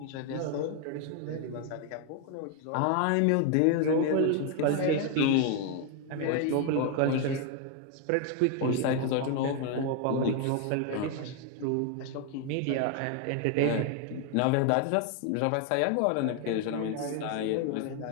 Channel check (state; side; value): different; both; correlation 0.01